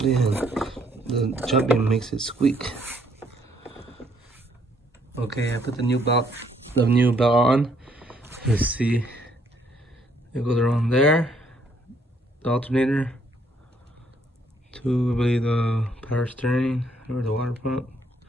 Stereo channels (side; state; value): both; normal; correlation 0.68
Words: and the jumping makes it squeak. Okay, I put the new belt on. Let's see. It goes around there. The alternator to, I believe, the power steering or the water pump.